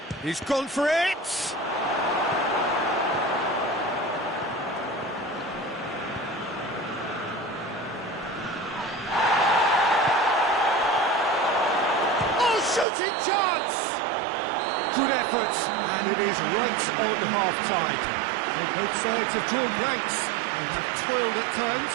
He's gone for it! Shooting chance! Good effort, and it is right on half-time. So both sides have drawn blanks and have toiled at times,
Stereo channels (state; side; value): drops out; left; at 12.9 s